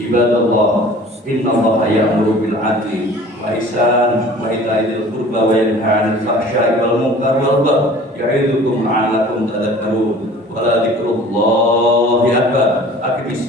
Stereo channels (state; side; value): normal; both; correlation 0.46